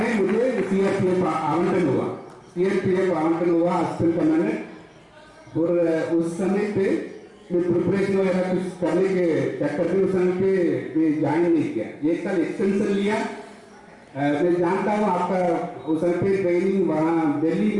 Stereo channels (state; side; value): identical; both; correlation 1.00